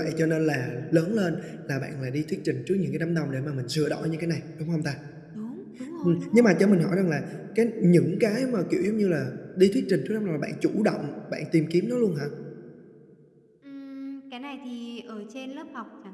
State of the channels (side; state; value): both; identical; correlation 1.00